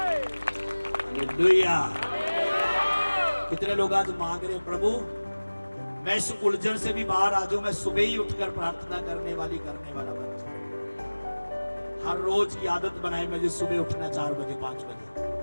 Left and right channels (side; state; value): both; inverted; correlation -1.00